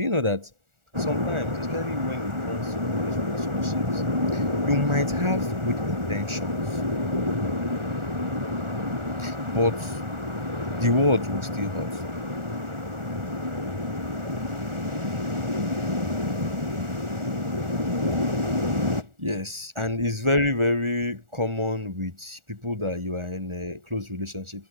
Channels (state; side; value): late; left; 1.4 ms